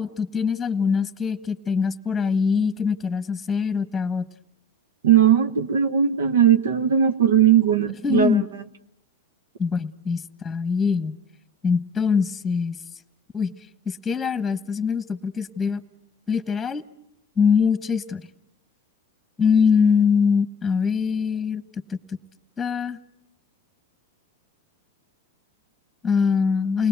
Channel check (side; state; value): both; normal; correlation 0.41